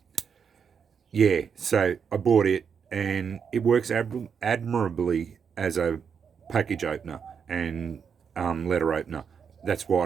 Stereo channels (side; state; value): left; quieter; 6.7 dB